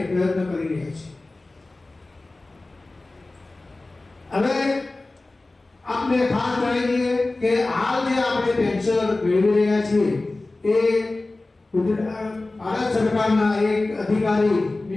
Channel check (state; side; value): quieter; right; 3.1 dB